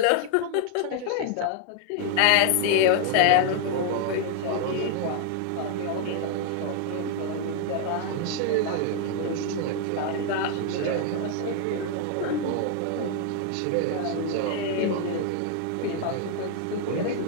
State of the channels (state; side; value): different; both; correlation 0.00